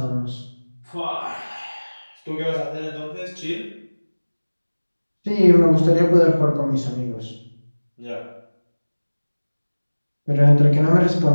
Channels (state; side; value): inverted; both; correlation -1.00